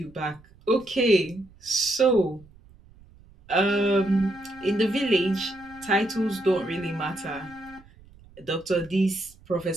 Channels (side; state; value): right; noise; rumble, 25 dB below the sound